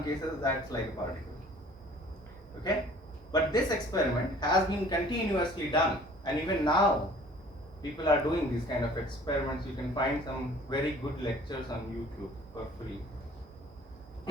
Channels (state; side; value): normal; both; correlation 0.51